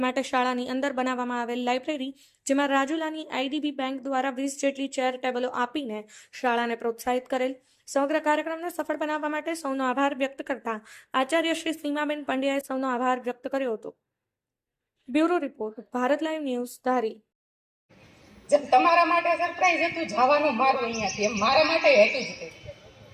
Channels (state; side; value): identical; both; correlation 1.00